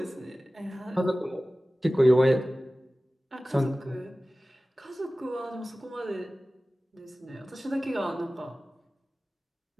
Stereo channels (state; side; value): normal; both; correlation 0.97